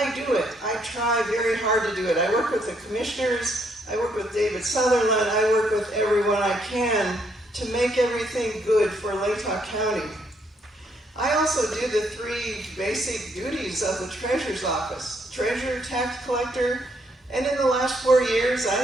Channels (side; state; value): both; normal; correlation 0.72